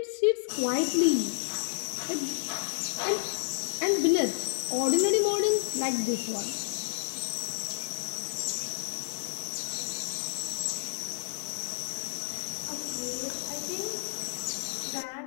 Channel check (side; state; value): right; silent; 57 dB below the other